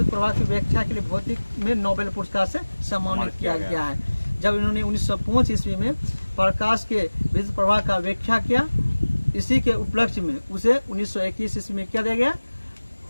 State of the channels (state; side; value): inverted; both; correlation -1.00